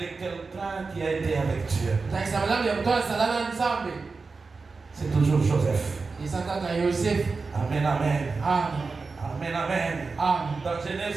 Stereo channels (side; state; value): left; quieter; 4.3 dB